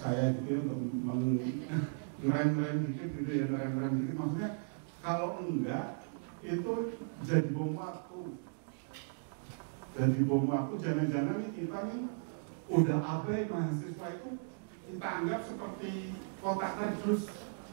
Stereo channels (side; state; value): left; silent; digital silence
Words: saya gitu untuk ngerem-ngerem dikit gitu ya, ngerem-ngerem dikit. Maksudnya kalau enggak itu jadi bom waktu. Jadi bom waktu, jangan-jangan kita nih udah abai mahasiswa itu kita anggap seperti kotak kardus.